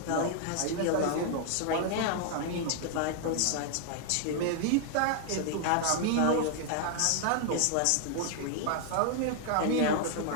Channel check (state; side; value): different; both; correlation 0.00